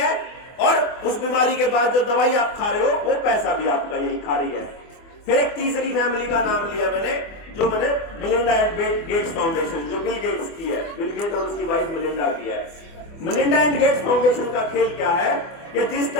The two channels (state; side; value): late; right; 24 ms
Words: और उस बीमारी के बाद जो दवाई आप खा रहे हो वो पैसा भी आपका यही खा रही है। फिर एक तीसरी फैमिली का नाम लिया मैंने, जो मैंने मिलिंडा एंड गेट्स फाउंडेशन, जो बिल गेट्स की है, बिल गेट और उसकी वाइफ मिलिंडा की है। मिलिंडा एंड गेट्स फाउंडेशन का खेल क्या है कि जिस